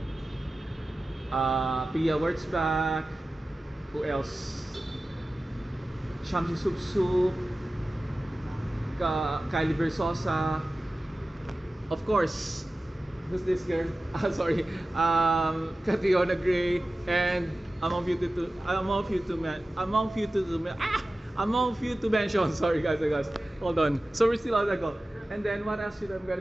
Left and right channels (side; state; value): both; normal; correlation 0.95